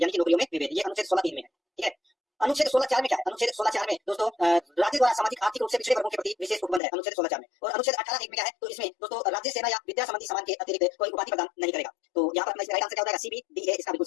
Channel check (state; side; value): drops out; right; at 6.8 s